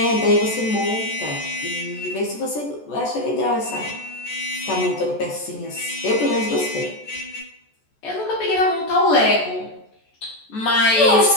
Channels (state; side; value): late; right; 14 ms